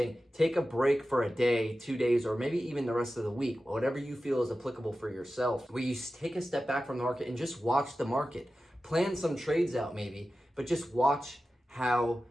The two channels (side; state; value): both; normal; correlation 0.94